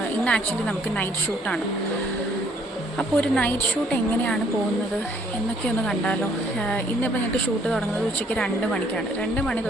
ഇന്ന് ആക്ച്വലി നമുക്ക് നൈറ്റ് ഷൂട്ടാണ്. അപ്പോൾ ഒരു നൈറ്റ് ഷൂട്ട് എങ്ങനെയാണ് പോകുന്നത് എന്നൊക്കെ ഒന്ന് കണ്ടാലോ. ഇന്നിപ്പോൾ ഞങ്ങൾക്ക് ഷൂട്ട് തുടങ്ങുന്നത് ഉച്ചയ്ക്ക് 2 മണിക്കാണ്. 2 മണി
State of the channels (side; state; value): both; normal; correlation 0.64